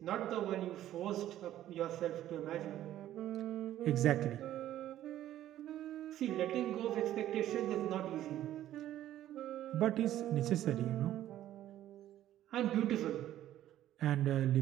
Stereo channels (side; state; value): left; quieter; 12.8 dB